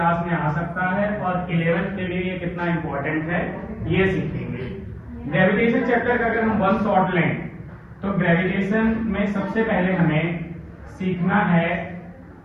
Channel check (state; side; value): identical; both; correlation 1.00